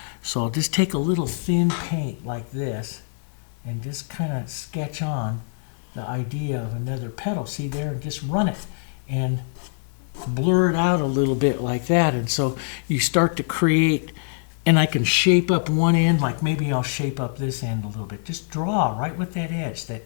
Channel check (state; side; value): silent; right; 63 dB below the other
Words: So I'll just take a little thin paint like this and just kind of sketch on the idea of another petal. See there, and just run it and blur it out a little bit like that. And so you start to create, and I can shape up one end, like maybe I'll shape up this end a little bit. Just draw right with that edge, that